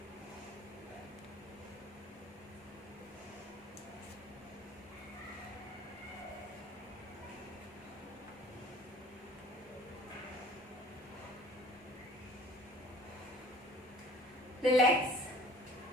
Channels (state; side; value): normal; both; correlation 0.49